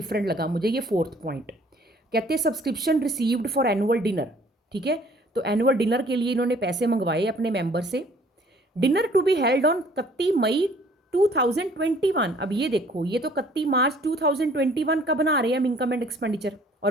लगा मुझे, ये 4th पॉइंट। कहते हैं subscription received for annual dinner, ठीक है। तो एनुअल डिनर के लिए इन्होंने पैसे मंगवाए अपने मेंबर से। Dinner to be held on 31 May 2021। अब ये देखो, ये तो 31 मार्च 2021 का बना रहे हैं हम इनकम एंड एक्सपेंडिचर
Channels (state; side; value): normal; both; correlation 0.56